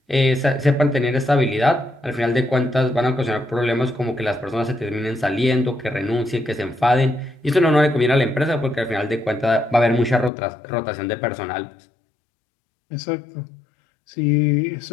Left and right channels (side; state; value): right; drops out; at 10.3 s